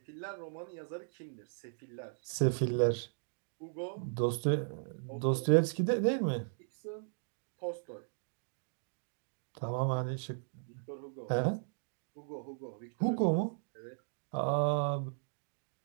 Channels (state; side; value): silent; left; digital silence